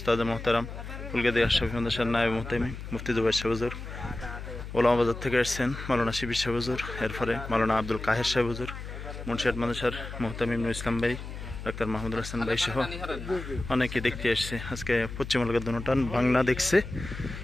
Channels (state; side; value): noise; left; hum, 9 dB below the sound